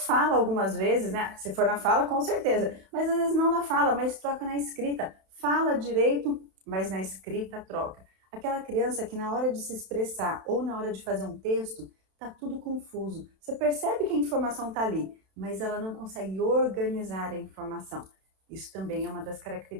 algumas vezes, né? Se for na fala, com certeza, mas às vezes não na fala, mas troca na escrita. Fala direito, mas na escrita troca. Aquela criança que na hora de se expressar ou na hora de fazer um texto, tá tudo confuso. Você percebe que a informação está ali, mas ela não consegue organizar a informação. Isso também é uma das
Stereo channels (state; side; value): late; left; 32 ms